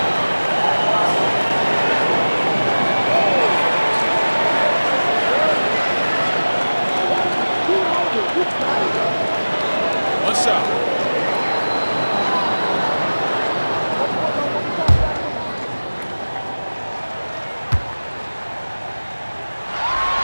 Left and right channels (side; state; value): both; inverted; correlation -1.00